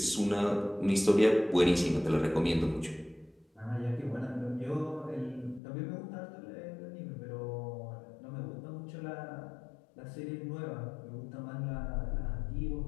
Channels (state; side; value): drops out; right; at 5.6 s